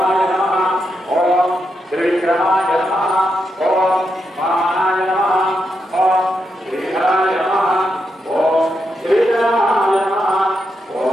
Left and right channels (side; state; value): both; normal; correlation 0.84